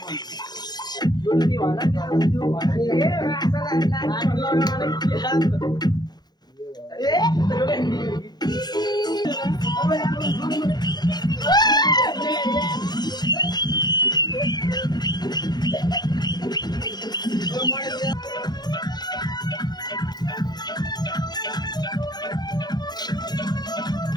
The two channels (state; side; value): late; right; 0.20 ms